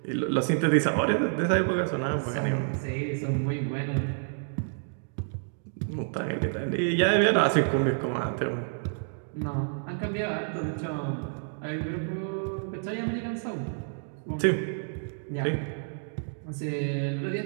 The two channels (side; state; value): left; silent; digital silence